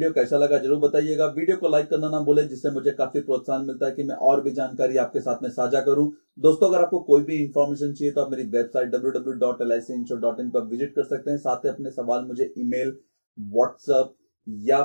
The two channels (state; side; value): inverted; both; correlation -1.00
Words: कैसा लगा जरूर बताइएगा। वीडियो को लाइक करना ना भूलें, जिससे मुझे काफी प्रोत्साहन मिलता है कि मैं और भी जानकारी आपके साथ में साझा करूं। दोस्तों, अगर आपको कोई भी इंफॉर्मेशन चाहिए तो आप मेरी वेबसाइट www.licinsure.in पर विजिट कर सकते हैं। साथ ही अपने सवाल मुझे ईमेल, व्हाट्सएप या